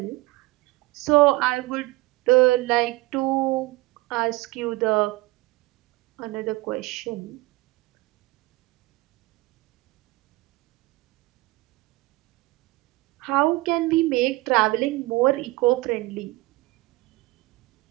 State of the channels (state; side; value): quieter; left; 21.1 dB